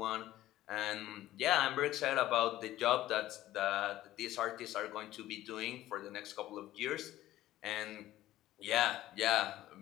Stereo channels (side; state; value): right; quieter; 14.7 dB